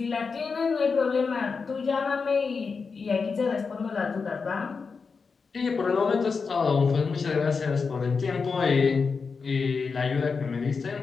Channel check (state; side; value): quieter; right; 5.0 dB